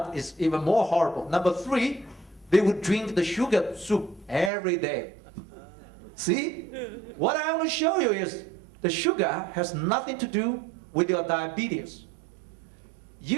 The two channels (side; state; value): left; drops out; at 4.5 s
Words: is even more horrible. Number three, they would drink the sugar soup every day. See? What I want to show you is the sugar has nothing to do with your diabetes.